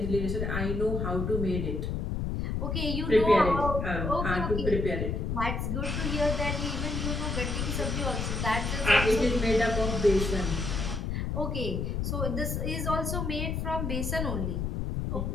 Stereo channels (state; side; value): noise; left; rumble, 1 dB below the sound